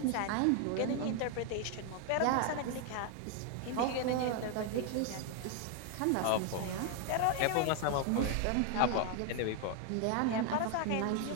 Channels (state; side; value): different; both; correlation 0.00